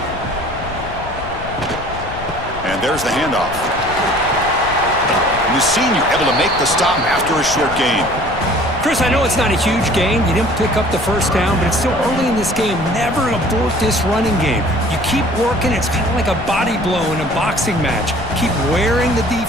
And there's the handoff. And the senior able to make the stop after a short gain. Chris, I know it's not a huge gain. You didn't pick up the first down, but it's still early in this game. Never abort this running game. You keep working. It's kind of like a body blow in a boxing match. Keep wearing the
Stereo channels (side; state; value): left; noise; rumble, 12 dB below the sound